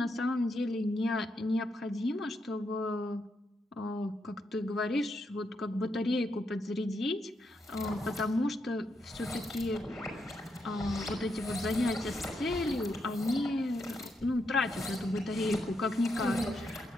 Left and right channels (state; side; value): normal; both; correlation 0.81